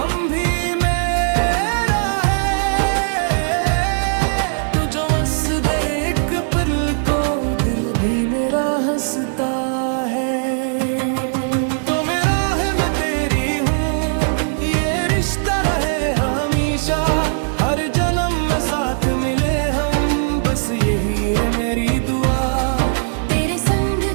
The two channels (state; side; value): silent; left; 66 dB below the other